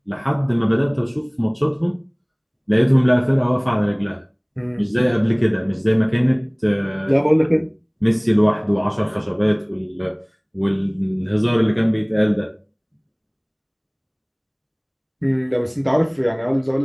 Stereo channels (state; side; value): identical; both; correlation 1.00